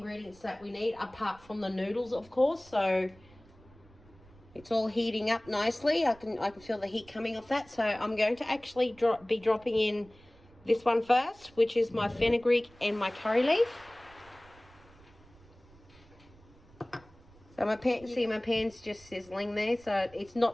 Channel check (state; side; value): noise; right; rumble, 25 dB below the sound